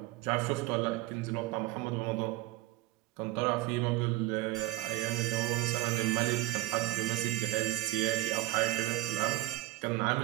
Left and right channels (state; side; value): quieter; left; 17.3 dB